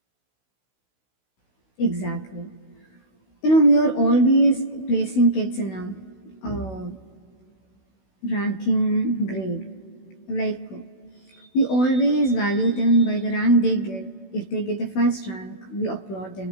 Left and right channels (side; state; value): right; late; 16 ms